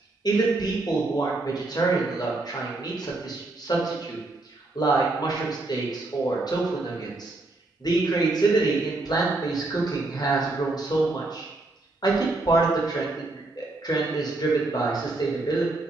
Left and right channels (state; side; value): quieter; left; 3.1 dB